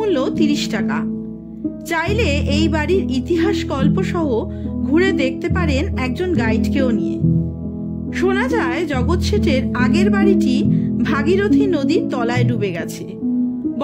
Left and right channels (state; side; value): identical; both; correlation 1.00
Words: 30 টাকা। চাইলে এই বাড়ির ইতিহাস গল্প সহ ঘুরে দেখতে পারেন একজন গাইডকেও নিয়ে। শোনা যায় জগৎ শেঠের আগের বাড়িটি ভাগীরথী নদীর তলায় ডুবে গেছে।